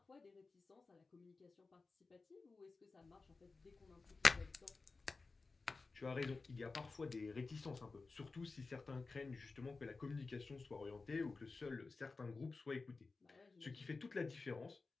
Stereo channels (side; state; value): right; quieter; 4.0 dB